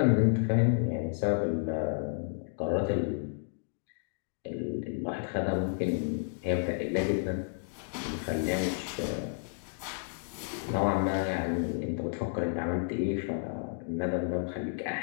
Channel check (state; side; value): silent; right; digital silence